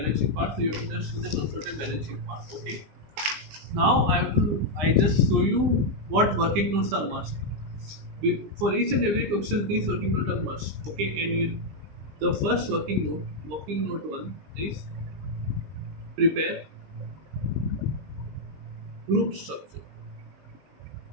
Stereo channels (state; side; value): late; left; 20 ms